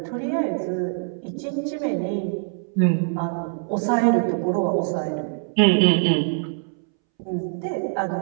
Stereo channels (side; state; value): left; silent; 63 dB below the other